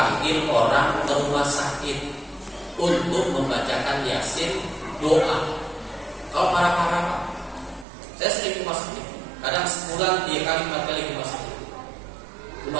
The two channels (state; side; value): drops out; left; at 7.9 s